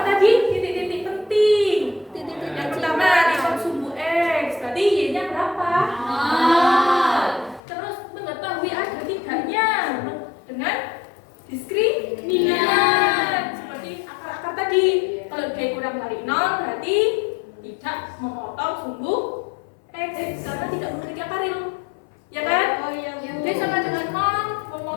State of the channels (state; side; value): drops out; right; at 7.6 s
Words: dikali 0 berarti tidak memotong sumbu X karena tidak memiliki akaril. Ya kan? Oh iya. D sama dengan 0